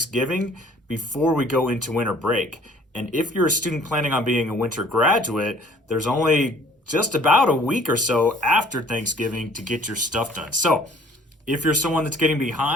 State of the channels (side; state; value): both; normal; correlation 0.55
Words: before we go into winter break. And if you're a student planning on being a winter graduate, there's only just about a week or so after Thanksgiving to get your stuff done. So if you're someone that's getting